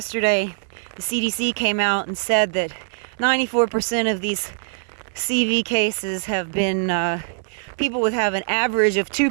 the CDC came out and said that 94% of these CV cases have been people with have an average of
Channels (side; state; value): left; silent; 64 dB below the other